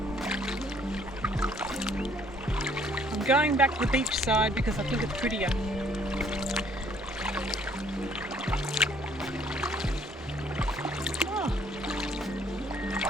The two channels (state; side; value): normal; both; correlation 0.62